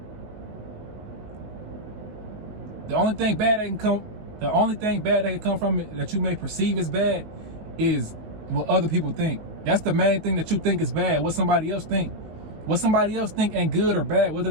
The only thing bad that can come from it that you may perceive as bad is what other people think. That's the main thing that you think is bad. What somebody else think. What somebody else think ain't good or bad, whether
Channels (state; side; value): late; left; 19 ms